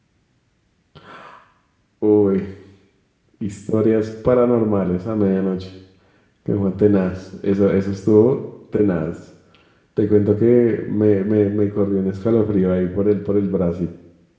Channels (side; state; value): both; identical; correlation 1.00